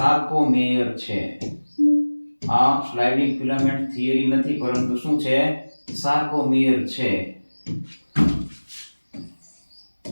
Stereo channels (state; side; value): inverted; both; correlation -1.00